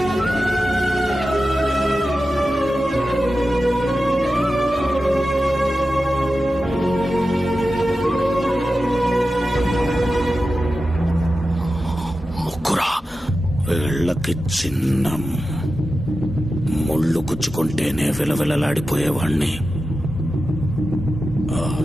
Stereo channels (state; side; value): normal; both; correlation 0.92